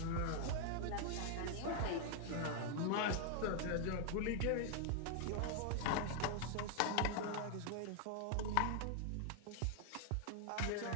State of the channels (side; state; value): both; different; correlation 0.00